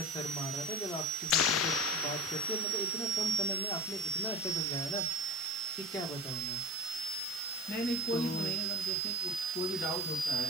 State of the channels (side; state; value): both; normal; correlation 0.32